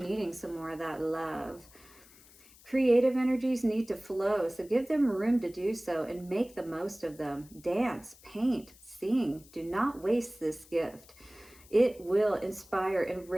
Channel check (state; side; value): noise; left; hiss, 24 dB below the sound